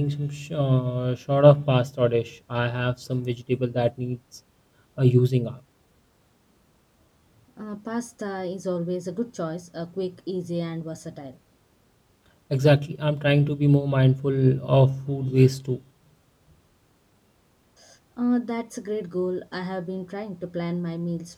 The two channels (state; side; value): identical; both; correlation 1.00